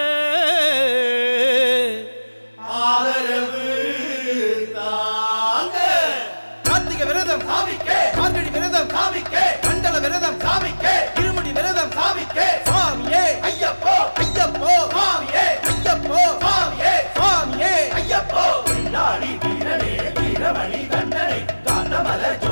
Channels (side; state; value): both; inverted; correlation -1.00